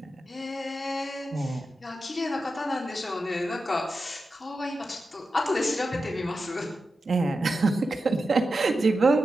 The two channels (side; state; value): both; normal; correlation 0.91